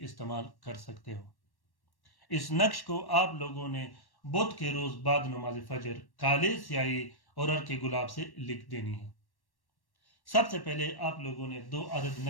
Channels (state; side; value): late; right; 1.1 ms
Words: इस्तेमाल कर सकते हो। इस नक्श को आप लोगों ने बुध के रोज बाद नमाज फजर काले स्याही और अर्के गुलाब से लिख देनी है। सबसे पहले आप लोगों ने 2 अदद